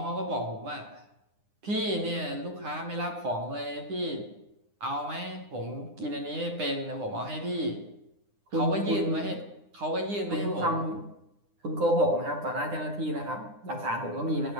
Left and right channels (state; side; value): late; left; 9.8 ms